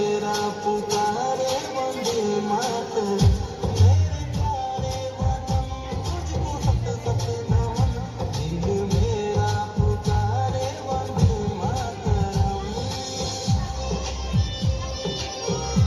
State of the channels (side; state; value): both; identical; correlation 1.00